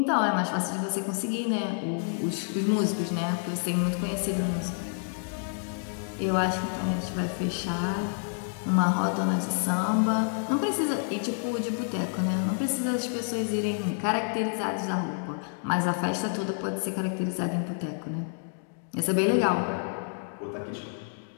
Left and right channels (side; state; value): right; silent; 59 dB below the other